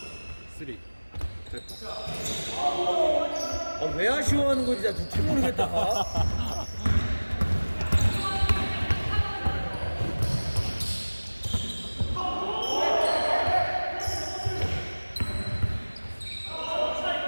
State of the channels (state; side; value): inverted; both; correlation -1.00